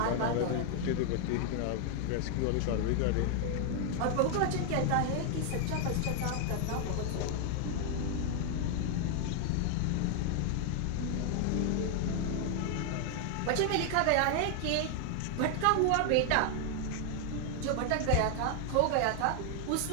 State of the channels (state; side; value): different; both; correlation 0.00